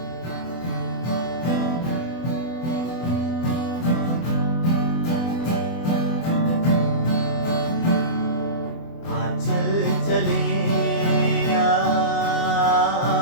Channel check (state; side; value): late; right; 24 ms